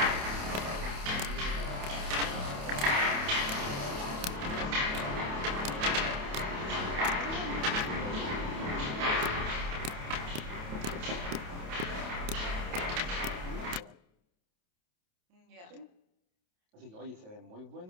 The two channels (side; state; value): left; late; 28 ms